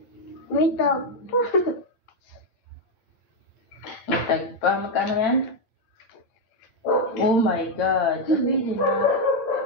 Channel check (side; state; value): right; late; 8.8 ms